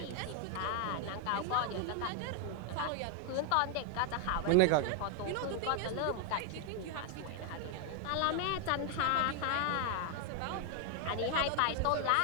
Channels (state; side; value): different; both; correlation 0.00